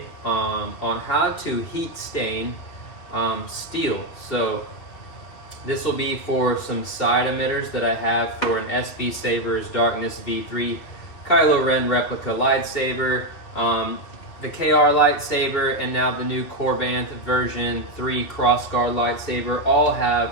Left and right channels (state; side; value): late; right; 2.9 ms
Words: on how to heat stain steel. So this will be for some side emitters that I have for an SB Sabres Darkness V3 Kylo Ren replica lightsaber, the KR lightsaber, and now the new Corbanth version 3 crossguard lightsaber all